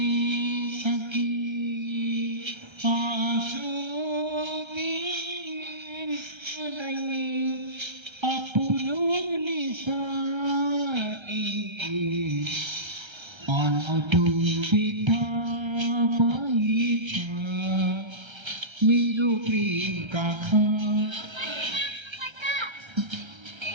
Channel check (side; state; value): left; late; 1.3 ms